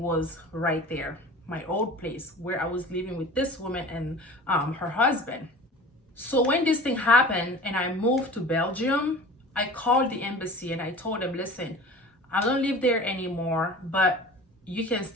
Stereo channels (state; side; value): normal; both; correlation 0.40